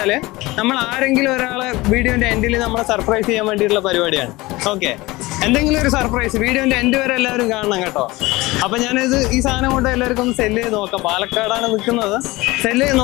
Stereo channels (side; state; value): right; quieter; 20.8 dB